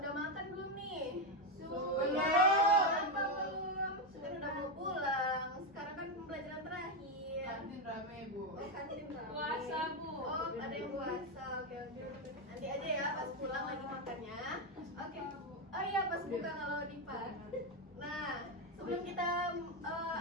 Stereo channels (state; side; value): normal; both; correlation 0.08